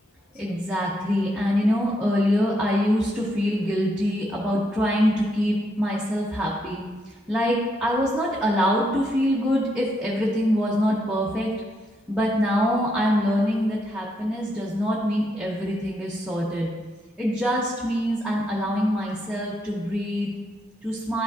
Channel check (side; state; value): both; normal; correlation 0.78